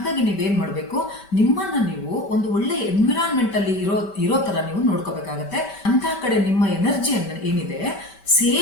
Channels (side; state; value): right; late; 5.1 ms